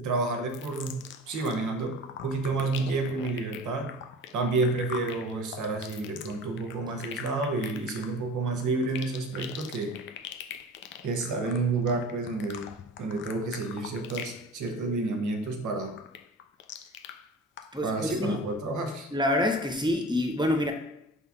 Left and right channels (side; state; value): both; normal; correlation 0.39